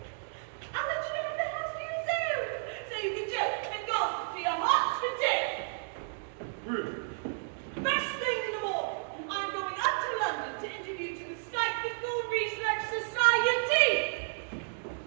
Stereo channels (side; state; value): left; silent; digital silence